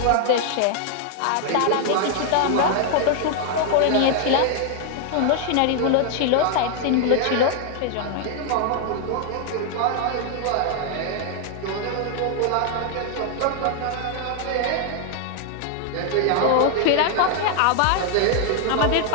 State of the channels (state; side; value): different; both; correlation 0.00